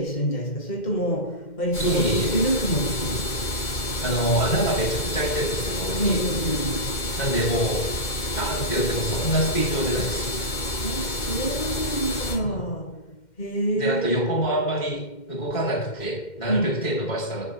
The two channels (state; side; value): late; right; 2.1 ms